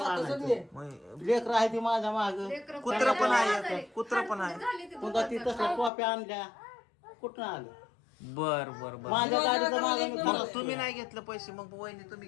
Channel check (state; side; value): drops out; right; at 5.9 s